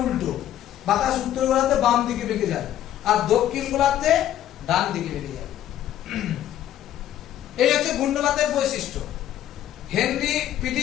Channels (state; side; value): quieter; right; 11.9 dB